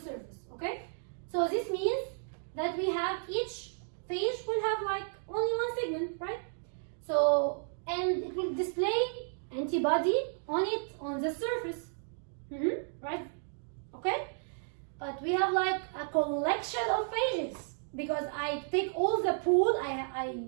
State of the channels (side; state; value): left; silent; digital silence